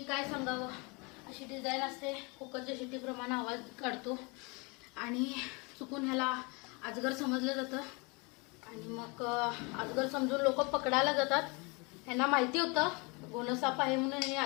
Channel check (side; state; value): right; quieter; 29.4 dB